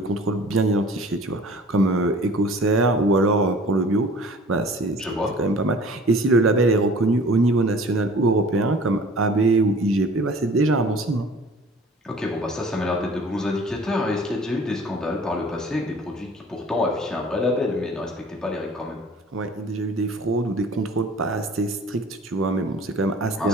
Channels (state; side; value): normal; both; correlation 0.47